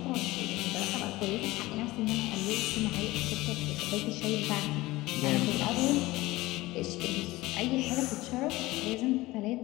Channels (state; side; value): quieter; right; 19.3 dB